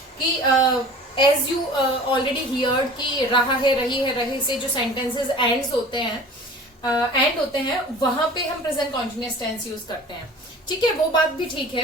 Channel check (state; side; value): normal; both; correlation 0.42